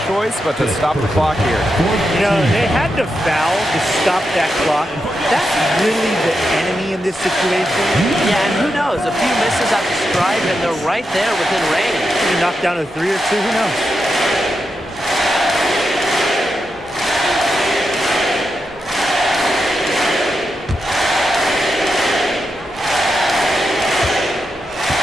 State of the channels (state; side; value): normal; both; correlation 0.86